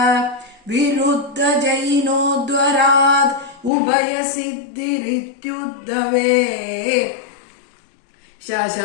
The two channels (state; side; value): drops out; right; at 3.7 s